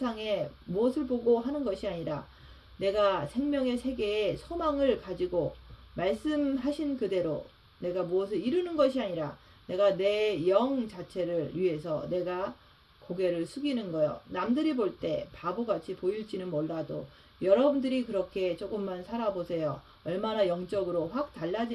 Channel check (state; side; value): identical; both; correlation 1.00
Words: 무엇을 보고 하는 것이 아니라 내가 생명의 세계에 소망을 가지고 말씀하신 그대로 내가 무엇을 이루는 것이 아니라 내가 내 영 자체를 위해서 내가 고개를 숙이는 거예요. 남들이 볼 때 바보같이 보일지는 몰라도 여러분들이 그렇게 조금만 살아보세요. 얼마나 영적으로 확